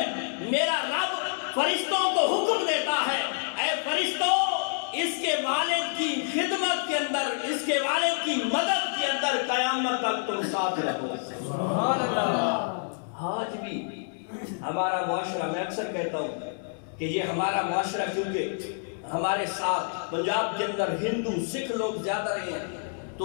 میرا رب فرشتوں کو حکم دیتا ہے، اے فرشتوں اس کے والد کی خدمت کے اندر، اس کے والد کی مدد کے اندر قیامت تک تم ساتھ رہو۔ سبحان اللہ۔ آج بھی ہمارا معاشرہ، میں اکثر کہتا ہوں کہ یہ ہمارا معاشرہ کیونکہ ہمارے ساتھ پنجاب کے اندر ہندو سکھ لوگ زیادہ رہے ہیں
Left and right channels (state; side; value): silent; right; digital silence